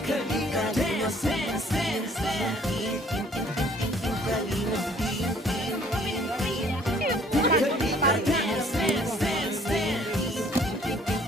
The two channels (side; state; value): both; normal; correlation 0.58